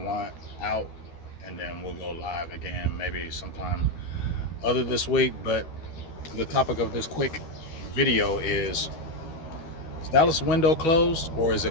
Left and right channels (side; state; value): right; late; 13 ms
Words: out, and then we'll go live again maybe sometime other this week. But the topic of this quick video is Dallas window closed or is